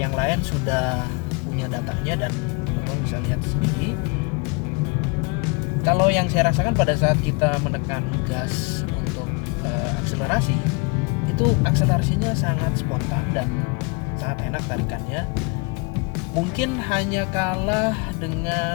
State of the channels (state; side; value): quieter; right; 30.7 dB